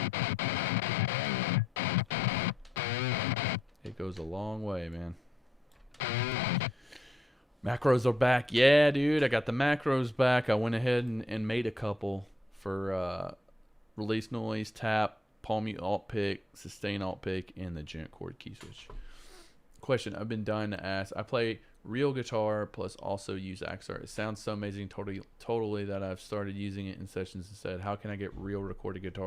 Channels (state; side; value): normal; both; correlation 0.80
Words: It goes a long way, man. Macros are back. Yeah, dude, I got the macros back. I went ahead and made a couple for release noise, tap, palm mute alt pick, sustain alt pick, and the gent chord key switch. Question I've been dying to ask. I play real guitar plus also use Axure. It sounds so amazing totally that I've started using it in sessions instead. How can I get real recorded